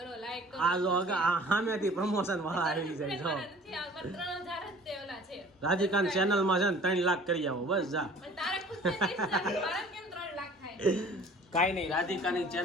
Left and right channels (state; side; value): normal; both; correlation 0.49